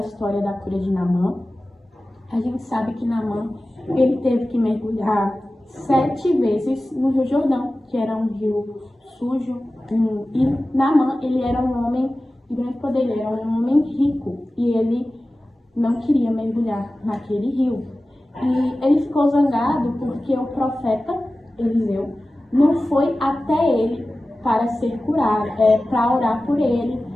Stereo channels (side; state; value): both; normal; correlation 0.96